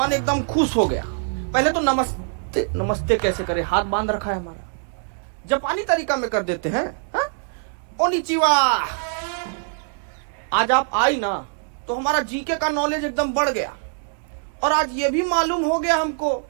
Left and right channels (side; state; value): left; silent; 63 dB below the other